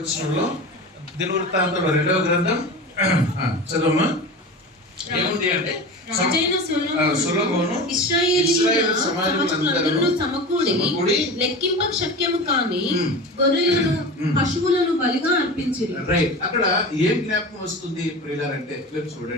దినవృత్తాంతంలో 2వ గ్రంథం చదవమ్మా. ఏముంది అంటే సొలొమోను ఇశ్రాయేలు సమాజములందరూ సమకూడి లెక్కింప శక్యము కాని గొర్రెలను పశువులను బలిగా అర్పించిరి. రైట్. అక్కడ ఏం జ్ఞాపకం వస్తుంది ప్రియులారంటే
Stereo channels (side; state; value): both; normal; correlation 0.31